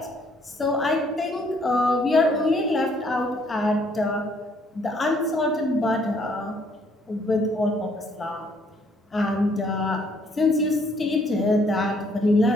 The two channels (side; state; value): both; normal; correlation 0.66